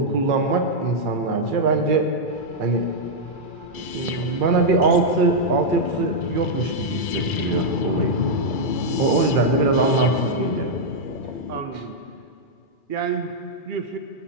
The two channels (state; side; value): late; right; 2.4 ms